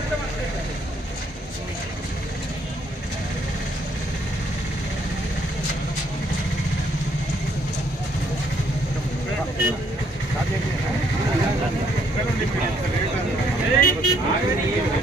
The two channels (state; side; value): normal; both; correlation 0.68